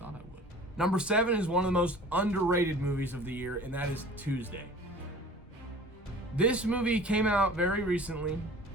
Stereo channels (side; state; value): both; normal; correlation 0.44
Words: I would. Number 7 is one of the most underrated movies of the year, and that is Tuesday. This movie came out very recently